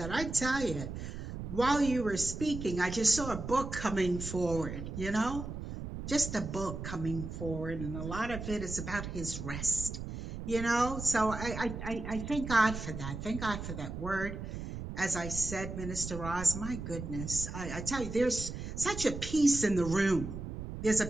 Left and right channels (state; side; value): noise; right; rumble, 7 dB below the sound